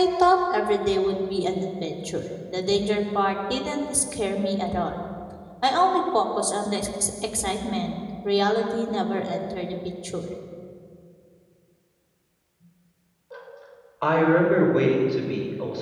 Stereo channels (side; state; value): both; identical; correlation 1.00